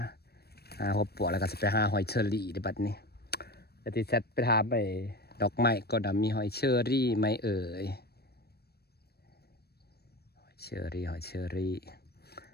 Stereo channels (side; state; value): right; late; 0.47 ms